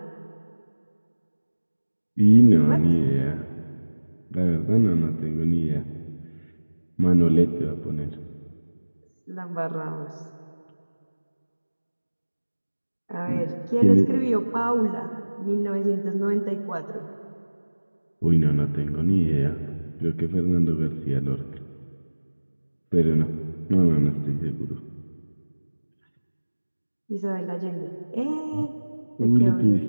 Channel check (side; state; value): both; inverted; correlation -1.00